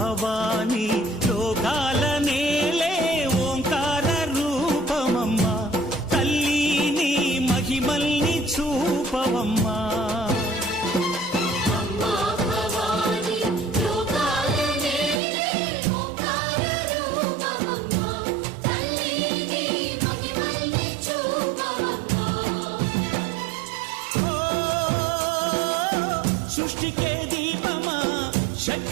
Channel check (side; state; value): left; drops out; at 15.2 s